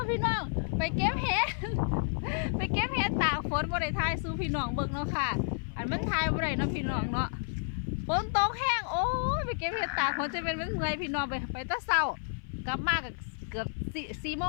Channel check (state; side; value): silent; right; 55 dB below the other